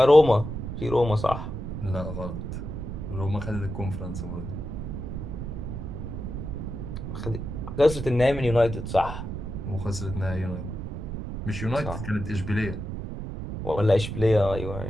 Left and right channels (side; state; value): right; noise; rumble, 6 dB below the sound